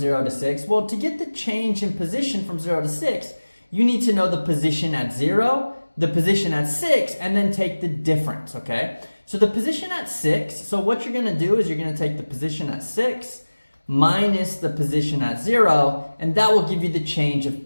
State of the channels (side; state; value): both; inverted; correlation -1.00